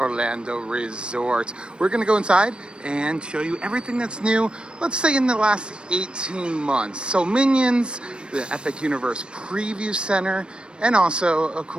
Resort. We're going to go inside and show you everything that's new, let's say in the last 18 months. So Minions, the Epic Universe Preview Center, and also, of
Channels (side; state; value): left; late; 0.055 ms